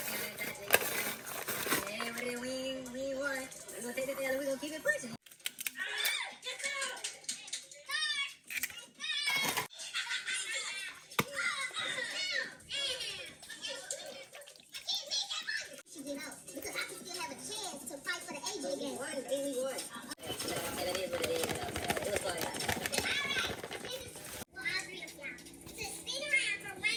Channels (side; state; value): both; identical; correlation 1.00